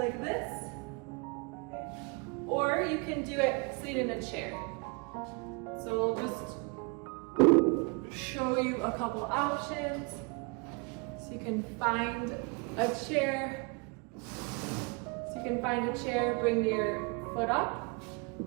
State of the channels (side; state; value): left; quieter; 31.1 dB